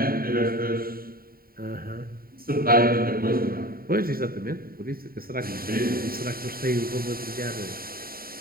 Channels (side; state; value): left; late; 0.43 ms